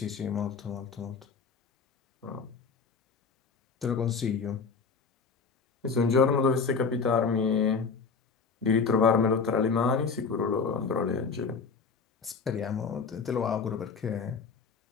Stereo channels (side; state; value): right; quieter; 5.1 dB